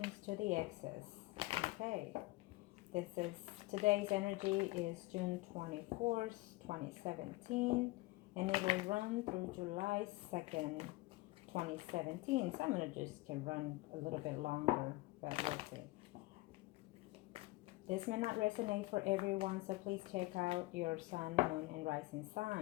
to the exes. Okay, today's energy is June 24th, 2017, and it will run through July 2nd, 2017. So I'm going to just can run a little bit longer, but we'll see. This may not resonate for everyone, so please check out your sun, moon, and rising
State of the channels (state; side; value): quieter; right; 21.0 dB